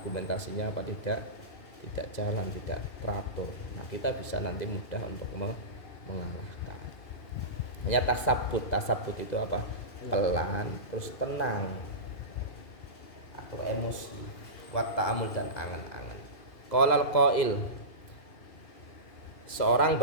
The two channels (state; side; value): late; right; 2.5 ms